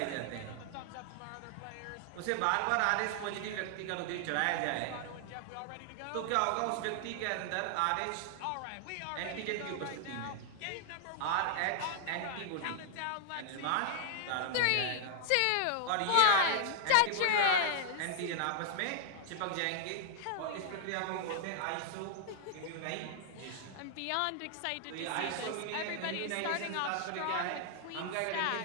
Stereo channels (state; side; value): different; both; correlation 0.00